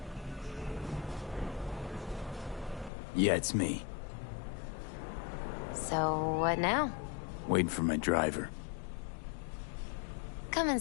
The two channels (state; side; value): drops out; right; at 2.9 s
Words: Yeah, it's me. So, what now? Waiting for my driver. Come